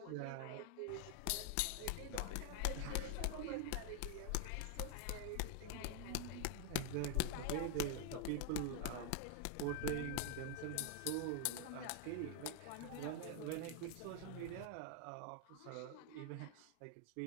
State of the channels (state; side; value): different; both; correlation 0.00